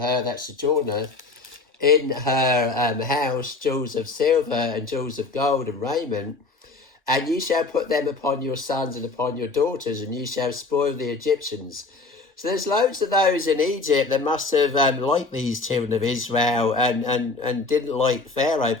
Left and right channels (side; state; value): right; quieter; 3.7 dB